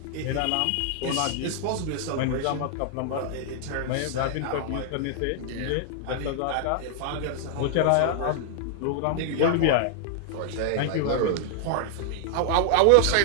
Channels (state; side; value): different; both; correlation -0.01